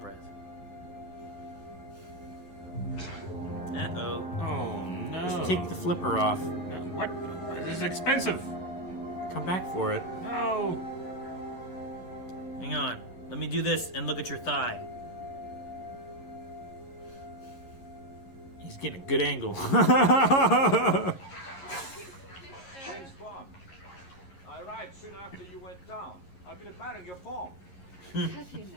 breath? Uh-oh. Oh, no. Just take the flipper off. What? This is expensive. Come back for it. No. Hang on. Let me do this and look at your thigh. He's getting a good angle. James Bond. I arrived soon after you went down. I've been admiring your form. Have you now?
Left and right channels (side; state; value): right; late; 11 ms